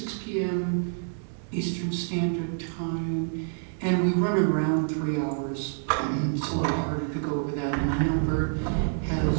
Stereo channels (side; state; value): left; silent; 59 dB below the other